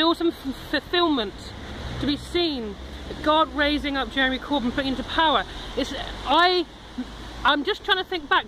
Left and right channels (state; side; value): identical; both; correlation 1.00